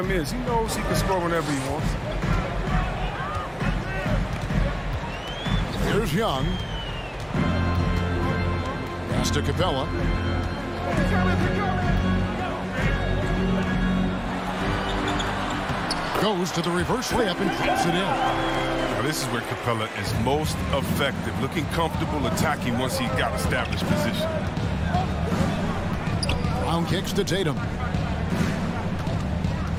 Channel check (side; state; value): both; identical; correlation 1.00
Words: is. He knows he can score whenever he wants. Here's Young. Pass to Capella. Goes to the reverse layup and drops it in. Now this is where Capella is most effective, looking comfortable attacking once he got established position. Brown kicks to Tatum.